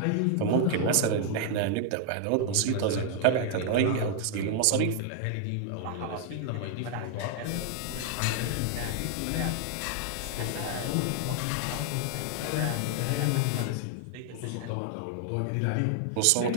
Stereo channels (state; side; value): different; both; correlation 0.00